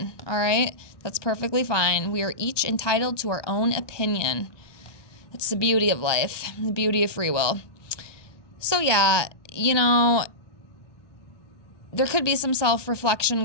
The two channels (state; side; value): late; right; 1.2 ms